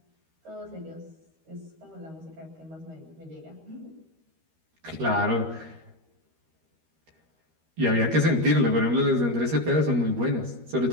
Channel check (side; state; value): left; late; 13 ms